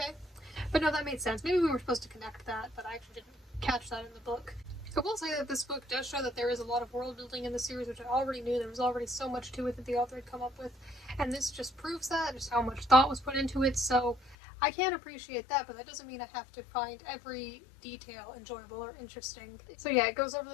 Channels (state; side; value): drops out; right; at 14.4 s